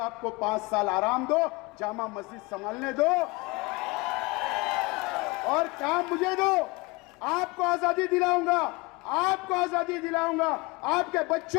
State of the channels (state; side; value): quieter; right; 25.0 dB